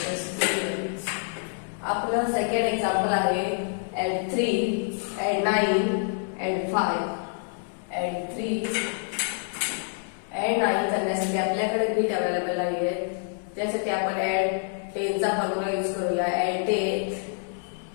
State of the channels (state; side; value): silent; right; 60 dB below the other